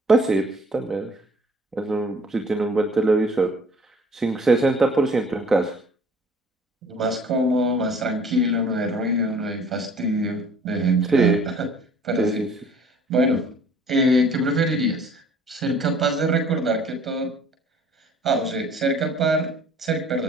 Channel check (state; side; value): normal; both; correlation 0.53